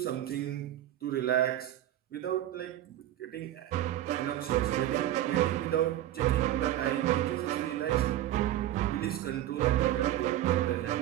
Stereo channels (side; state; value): left; quieter; 13.1 dB